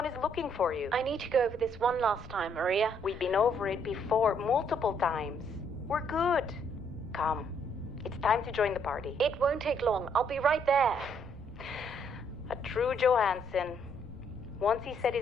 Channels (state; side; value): normal; both; correlation 0.69